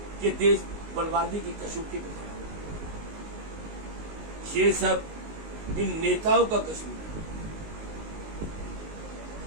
कि देश बर्बादी की कसौटी में खड़ा है। ये सब इन नेताओं का कसूर है।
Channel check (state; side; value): late; left; 19 ms